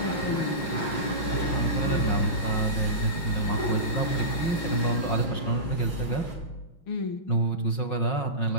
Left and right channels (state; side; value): late; right; 6.5 ms